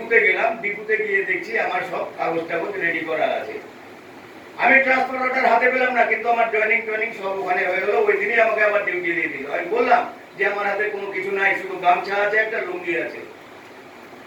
গেলাম। ডিপুতে গিয়ে দেখছি আমার সব কাগজ টাগজ রেডি করা আছে। আমি ট্রান্সফার অর্ডার হাতে পেলাম না, কিন্তু আমার জয়েনিং সব ওখানে হয়ে গেল। ওই দিনই আমাকে আবার ডিউটি দিয়ে দিল। আমি বললাম যে আমার হাতে কোনো কিছু নাই, শুধু গামছা আছে, একটা লুঙ্গি আছে।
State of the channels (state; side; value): identical; both; correlation 1.00